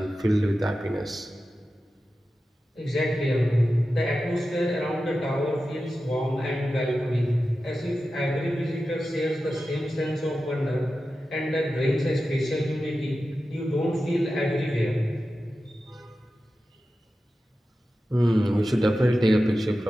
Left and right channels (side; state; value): both; normal; correlation 0.93